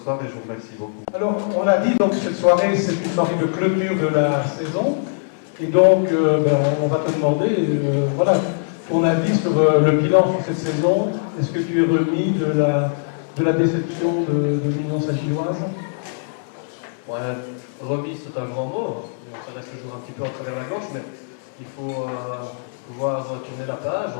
soir, et je vous remercie beaucoup. Alors, on a dit donc cette soirée, c'est une soirée de clôture de la saison, et donc on va te demander, voilà, ton avis sur le bilan sur cette saison. Est-ce que tu es remis de la déception de l'Union Saint-Gilloise? Ouais, remis, c'est un grand mot. Ça reste toujours un petit peu en travers la gorge, mais il faut pouvoir tourner la page,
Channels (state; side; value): silent; right; digital silence